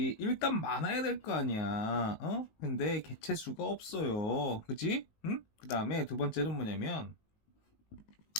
일단 많아야 될 거 아니야. 근데 개체수가 없어요. 그지? 응? 그 다음에 두 번째는 뭐냐면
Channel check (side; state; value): right; late; 19 ms